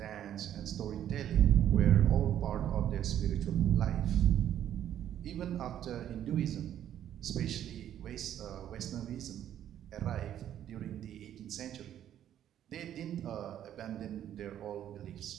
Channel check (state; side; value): quieter; left; 10.8 dB